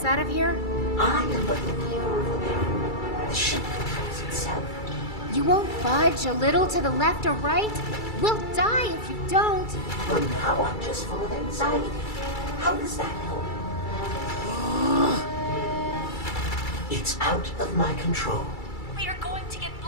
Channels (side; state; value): right; late; 2.3 ms